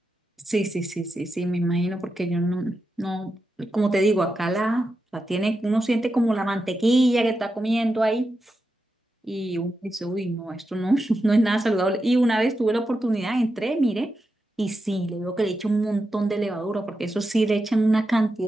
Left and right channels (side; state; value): both; normal; correlation 0.88